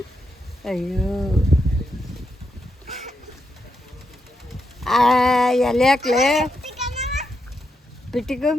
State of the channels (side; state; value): both; normal; correlation 0.83